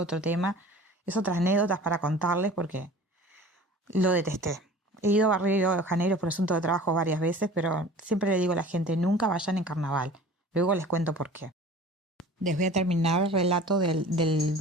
tema, es otras anécdotas para contarles porque lo detesté. He ido a Río de Janeiro por asunto de trabajo varias veces, pero siempre le digo a la gente, nunca vayan en carnaval. Luego les cuento por qué. Les voy a terminar el relato del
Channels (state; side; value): normal; both; correlation 0.43